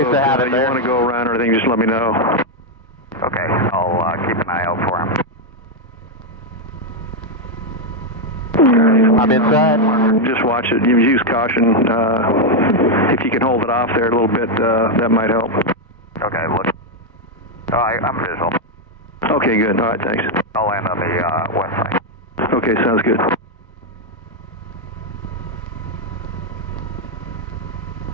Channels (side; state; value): both; normal; correlation 0.02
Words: to have it you there. want to go around or anything, just let me know. Okay, I'll keep an eye out for him. I'm inside. Just watch it. You use caution. If you can hold it off there a little bit, that might help. Okay, look. I'm visual. Okay, good. All right, thanks. I'll land on the west side. Okay, sounds good.